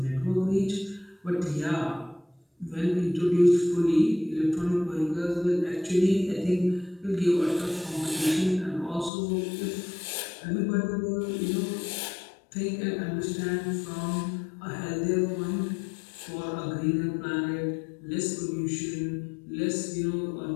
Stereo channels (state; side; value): drops out; right; at 9.1 s